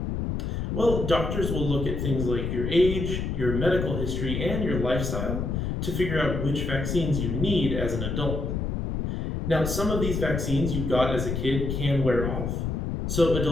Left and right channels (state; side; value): noise; left; rumble, 2 dB below the sound